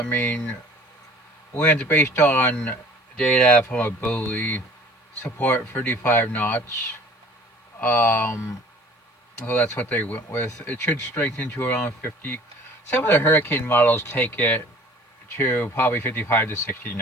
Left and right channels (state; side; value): normal; both; correlation 0.49